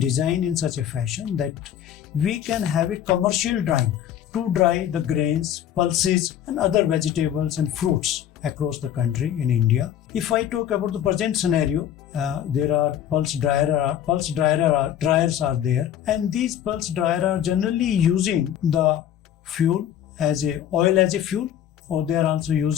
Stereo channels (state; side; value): quieter; right; 10.4 dB